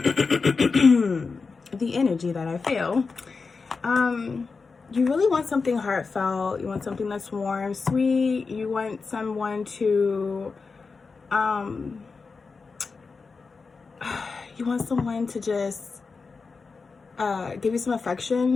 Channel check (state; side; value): quieter; right; 4.6 dB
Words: you really want something heartfelt. You want something that's warm, sweet. You want someone to, just give you some